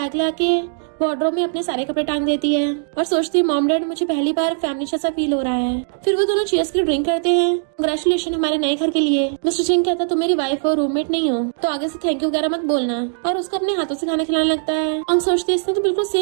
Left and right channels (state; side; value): silent; left; digital silence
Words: लाके वार्डरोब में अपने सारे कपड़े टांग देती है और सोचती है मॉम डैड मुझे पहली बार फैमिली जैसा फील हो रहा है। फिर वो दोनों चीयर्स की ड्रिंक करते हैं, कांग्रेचुलेशन हमारे नए घर के लिए। मिस्टर सिंह कहता तुम मेरी वाइफ हो रूममेट नहीं हो तो आगे से थैंक यू वगैरह मत बोलना और उसको अपने हाथों से खाना खिलाने लगता है। और सोचती है इसने तो बिल्कुल